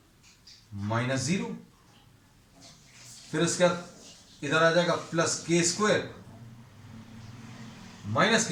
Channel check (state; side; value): identical; both; correlation 1.00